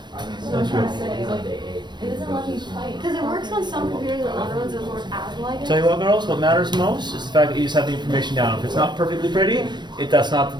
That's good. It doesn't let me type. Because it works on some computers and other ones that work as like it. Tell you what, girls, what matters most is the fact that you just have the information down. If it's not perfectly pretty, that's not the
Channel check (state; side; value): late; left; 0.22 ms